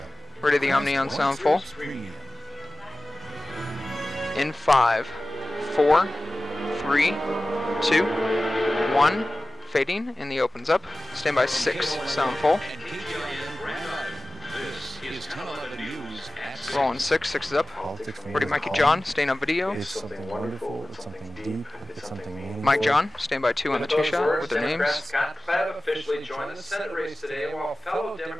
Ready the Omni on sound full. In 5, 4, 3, 2, 1. Fading, and the opens up. Stand by 6, sound full. Rolling 6, 6 is up. Ready Mikey John, staying on video. It's something wonderful, it's something deep, it's something meaningful. Mike John, stand by 2 on the 2 shot with their names. Scott Klebb officially joined the Senate race today, while fellow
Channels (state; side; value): normal; both; correlation 0.96